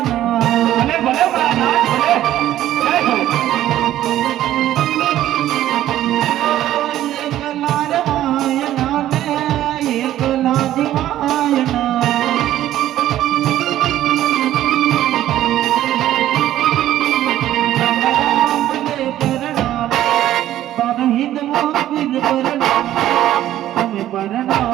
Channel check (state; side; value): quieter; left; 13.0 dB